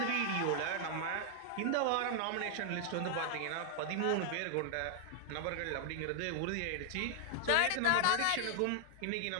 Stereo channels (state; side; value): different; both; correlation -0.01